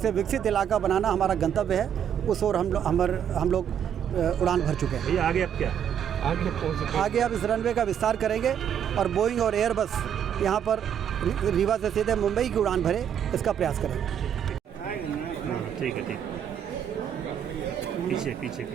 विकसित इलाका बनाना हमारा गंतव्य है, उस ओर हम लोग उड़ान भर चुके हैं। भैया आगे अब क्या? आगे अब इस रनवे का विस्तार करेंगे और बोइंग और एयरबस यहाँ पर रीवा से सीधे मुंबई की उड़ान भरे, इसका प्रयास करेंगे। ठीक है, ठीक। पीछे पीछे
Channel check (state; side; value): quieter; left; 8.9 dB